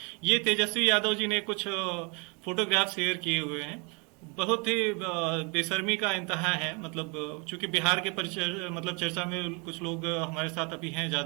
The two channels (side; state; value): left; quieter; 32.1 dB